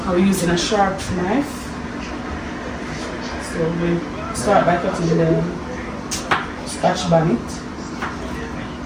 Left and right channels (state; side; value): identical; both; correlation 1.00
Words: I'm using a sharp knife. So we start by cutting the scotch bonnet.